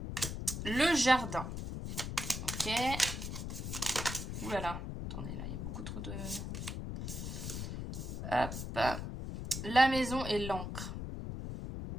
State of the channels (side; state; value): left; noise; rumble, 5 dB below the sound